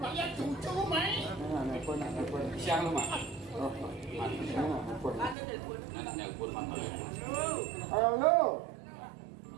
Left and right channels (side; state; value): left; drops out; at 5.4 s